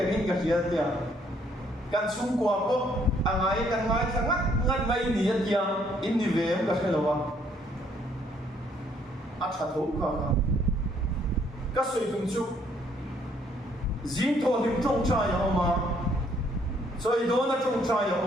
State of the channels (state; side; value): normal; both; correlation 0.66